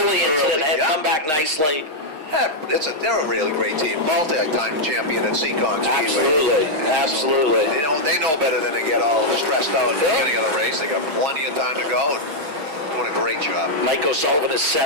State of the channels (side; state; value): left; late; 6.4 ms